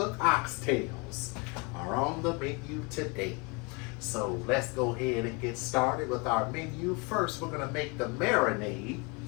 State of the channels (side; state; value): right; quieter; 29.9 dB